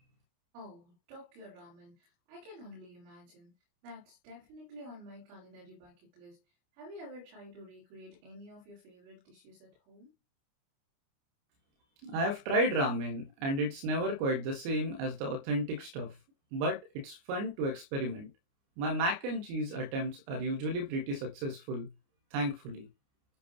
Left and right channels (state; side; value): late; left; 29 ms